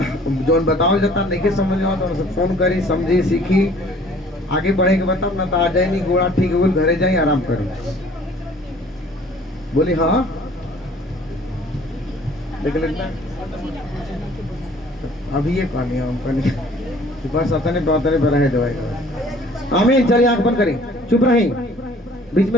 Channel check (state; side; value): normal; both; correlation 0.54